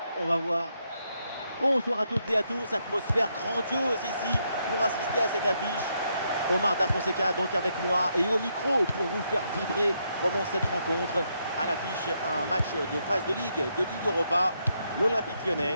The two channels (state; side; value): inverted; both; correlation -0.78